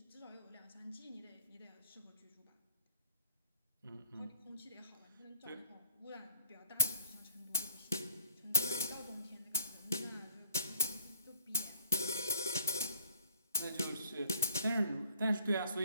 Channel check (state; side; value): inverted; both; correlation -0.64